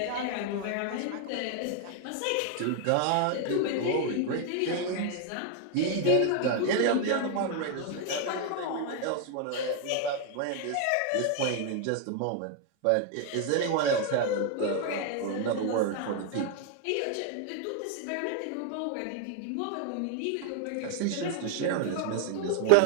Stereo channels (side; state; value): both; different; correlation 0.00